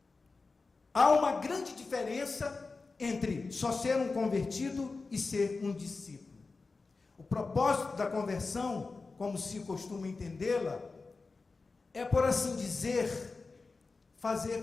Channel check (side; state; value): right; quieter; 4.0 dB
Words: Há uma grande diferença entre só ser um convertido e ser um discípulo. O propósito da conversão, como se costuma entendê-la, é, por assim dizer, fazer